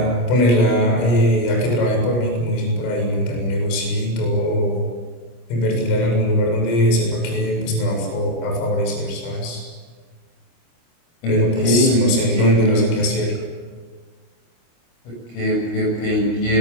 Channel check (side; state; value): right; late; 25 ms